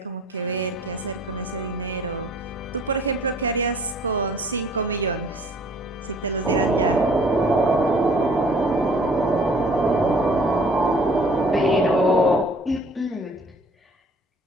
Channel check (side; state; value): both; normal; correlation 0.55